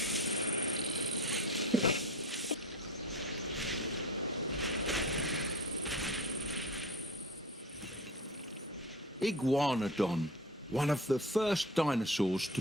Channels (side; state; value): both; normal; correlation 0.35